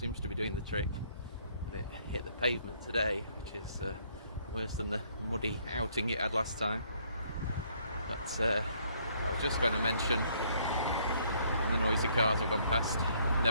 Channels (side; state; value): both; inverted; correlation -0.66